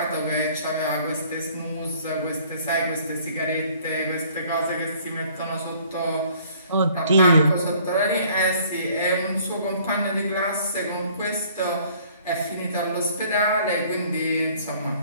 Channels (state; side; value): inverted; both; correlation -0.57